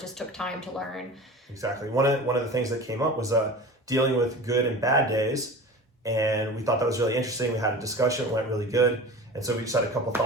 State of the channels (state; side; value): normal; both; correlation 0.35